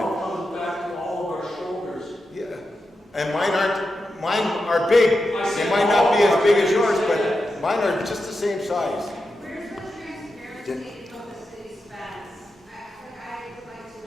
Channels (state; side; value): normal; both; correlation 0.89